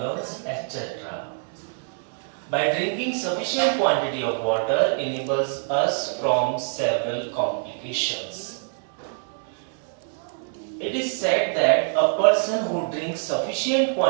etc. By drinking sufficient quantity of water enables us from several complications. It is said that a person who drinks sufficient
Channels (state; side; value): silent; left; digital silence